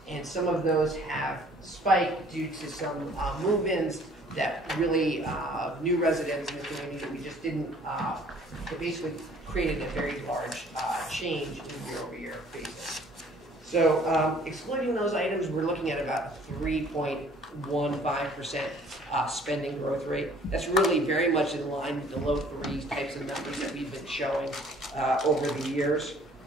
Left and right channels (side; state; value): both; normal; correlation 0.56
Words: and some of those have spiked due to some move-ins that really new residents in the community that we just didn't, it basically created a very large change in year-over-year basis. So excluding those items, we're looking at about 3.15% spending growth rate. That's really very much in line with the low threes types of numbers that we've been showing over the years.